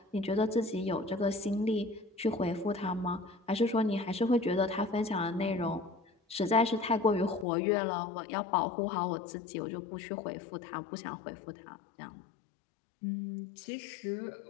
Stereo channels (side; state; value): right; drops out; at 7.5 s